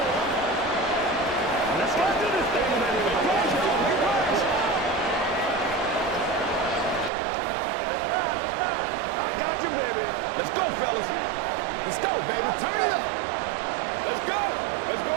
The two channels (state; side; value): drops out; left; at 7.1 s